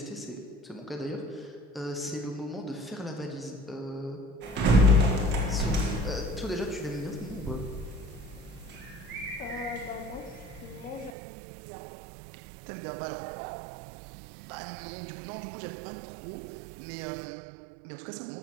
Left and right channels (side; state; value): left; drops out; at 11.1 s